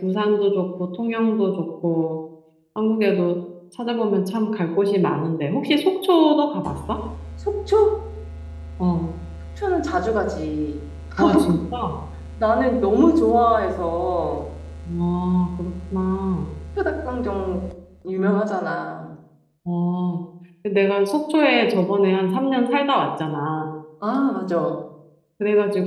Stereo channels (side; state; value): both; identical; correlation 1.00